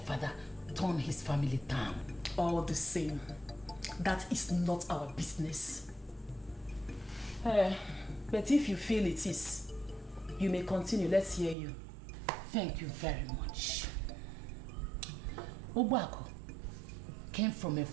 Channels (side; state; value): left; drops out; at 11.6 s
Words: turned his family down. All the same, that is not our business. But if you feel it is, you may continue. Let's hear you. Thank you very much. Ogbaku came from a